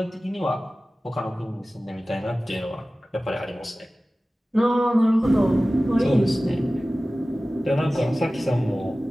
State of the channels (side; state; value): both; normal; correlation 0.97